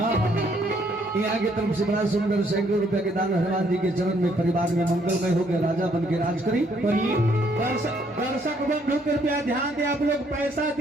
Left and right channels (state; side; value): normal; both; correlation 0.68